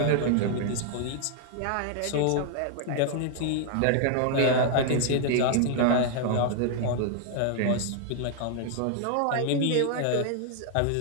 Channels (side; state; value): both; different; correlation 0.00